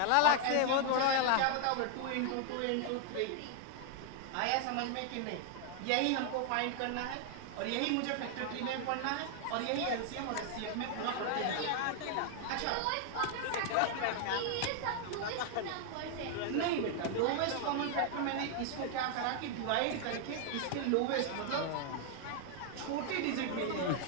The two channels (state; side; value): different; both; correlation 0.00